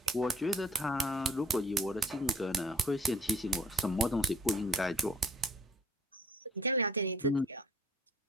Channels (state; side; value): normal; both; correlation 0.55